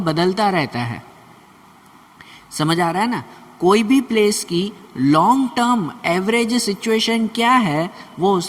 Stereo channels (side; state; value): both; identical; correlation 1.00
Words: रहता है। समझ आ रहा है ना? कोई भी प्लेस की लॉन्ग टर्म एवरेज सिचुएशन क्या है, वो